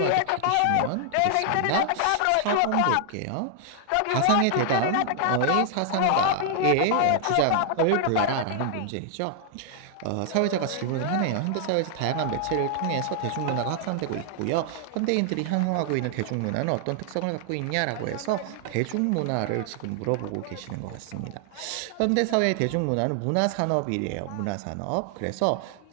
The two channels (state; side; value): different; both; correlation 0.00